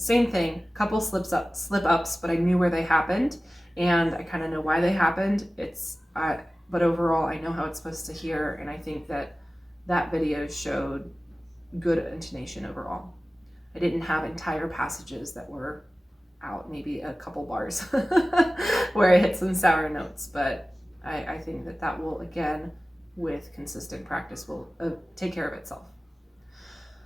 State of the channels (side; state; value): both; normal; correlation 0.96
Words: thing, couple slip-ups, but I knew where they happened, and I kind of know why they happened. But overall, I know how it's supposed to hear, and I think that video showed good intonation overall. I didn't have entire passages that were out, maybe a couple bars where I hit some sour notes, but I think that will, again, with consistent practice, will take care of itself.